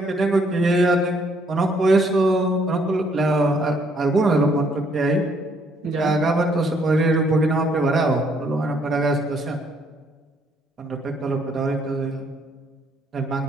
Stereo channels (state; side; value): normal; both; correlation 0.68